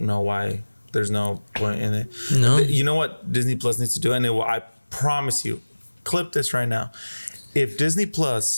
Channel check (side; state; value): both; inverted; correlation -1.00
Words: know why there's no point in it. No. You know what Disney Plus needs to do, and it will. I promise you, clip this right now. If Disney